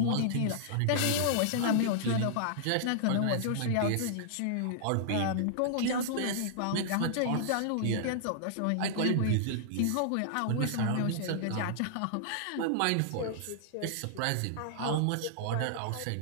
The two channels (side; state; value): both; different; correlation -0.01